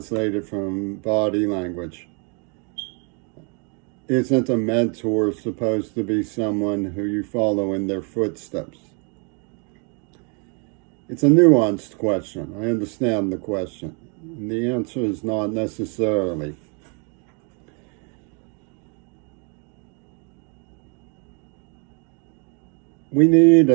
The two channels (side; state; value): left; quieter; 35.4 dB